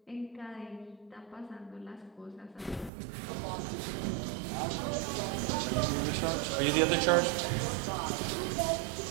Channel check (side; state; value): left; drops out; at 2.9 s